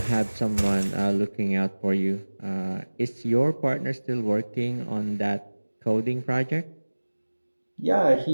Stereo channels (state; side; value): inverted; both; correlation -1.00